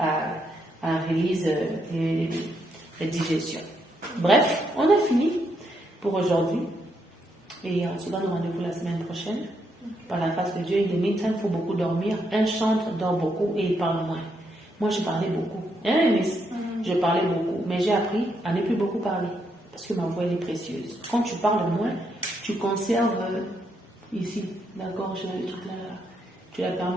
réaliser la digestion. Bref, on a fini pour aujourd'hui. Et on se donne rendez-vous la semaine prochaine. Par la grâce de Dieu, in the meantime, il faut beaucoup dormir. Un chante, dort beaucoup et il parle moins. Moi, je parlais beaucoup. Hein, Miss? Je parlais beaucoup. Mais j'ai appris à ne plus beaucoup parler. Parce que ma voix, elle est précieuse. Quand tu parles moins, tu conserves ici, la gorge, le truc là. Tu la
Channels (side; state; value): both; normal; correlation 0.78